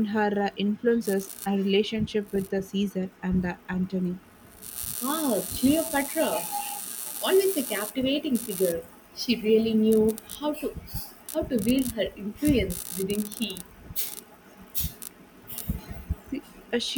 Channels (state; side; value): identical; both; correlation 1.00